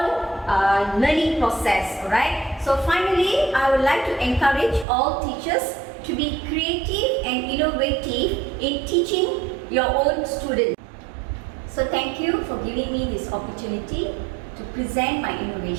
learning process, alright? So finally, I would like to encourage all teachers to be creative and innovative in teaching your own students. So thank you for giving me this opportunity to present my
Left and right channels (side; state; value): left; drops out; at 4.9 s